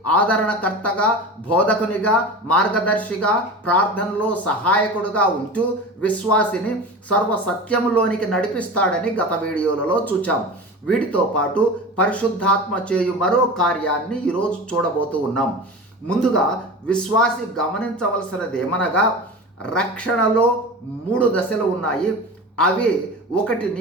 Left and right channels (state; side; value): normal; both; correlation 0.31